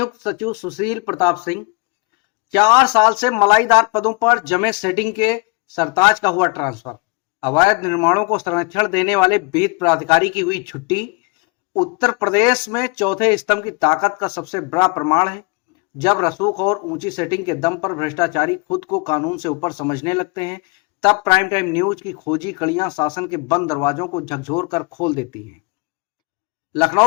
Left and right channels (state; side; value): quieter; right; 29.2 dB